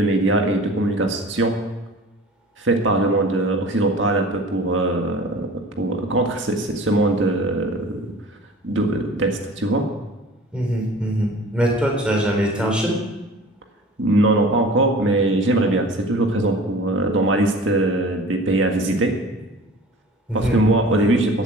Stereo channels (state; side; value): normal; both; correlation 0.42